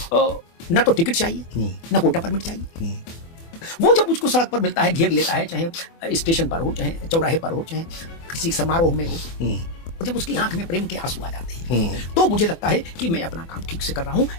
न तो टिकट चाहिए, न कोटा परमिट चाहिए। वो जब मुझको सड़क पर मिलता है, घेर लेता है, चाहे स्टेशन पर हो, चाहे चौराहे पर हो, चाहे किसी समारोह में हो, और जब उसकी आंख में प्रेम के आंसू आ जाते हैं, तो मुझे लगता है कि मैं अपना काम ठीक से कर रहा हूं।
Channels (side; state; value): right; late; 24 ms